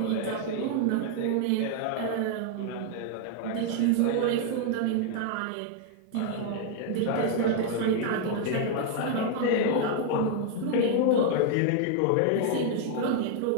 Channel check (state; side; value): different; both; correlation 0.00